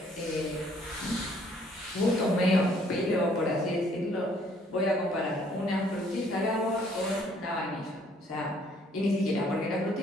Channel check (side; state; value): both; normal; correlation 0.63